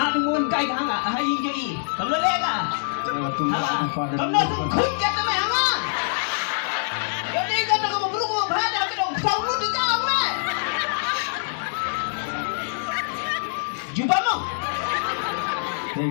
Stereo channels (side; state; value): right; silent; digital silence